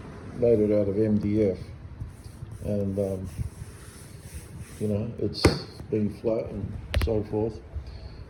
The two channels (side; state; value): both; identical; correlation 1.00